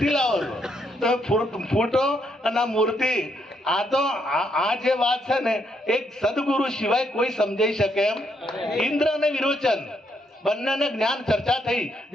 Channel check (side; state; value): both; normal; correlation 0.75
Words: લાવો છો? તમે ફોટો અને મૂર્તિ આ જે વાત છે ને એક સદગુરુ સિવાય કોઈ સમજાઈ શકે એમ? ઇન્દ્ર અને વિરોચન બંનેને જ્ઞાન ચર્ચા થઈ,